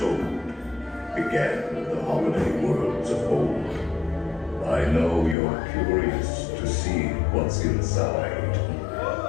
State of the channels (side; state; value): right; drops out; at 5.4 s